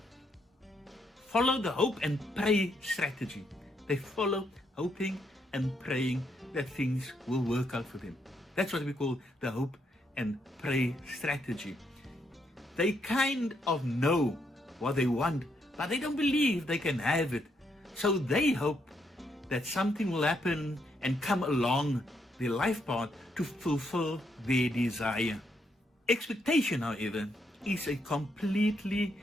follow the hope and pray strategy. They follow hoping and praying that things will work out for them. That's what we call the hope and pray strategy. They kind of know what they want, but they don't believe they can have it. So they hope that something will happen and come along their life path to fulfill their desire. Expectation, however, is a completely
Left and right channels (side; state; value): both; normal; correlation 0.76